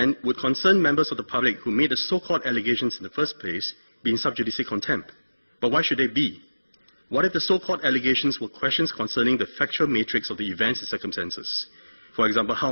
would concerned members of the public who made the so-called allegations in the first place be in sub judice contempt? But why should they be? What if the so-called allegations were questions concerning the factual matrix of the events and circumstances? For example, how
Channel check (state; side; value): inverted; both; correlation -1.00